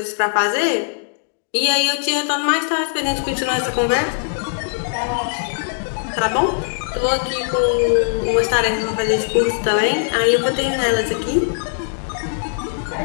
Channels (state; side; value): silent; right; digital silence